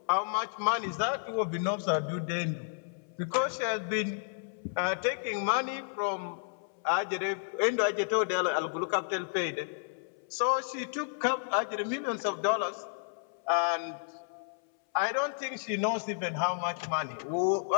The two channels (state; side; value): silent; right; 57 dB below the other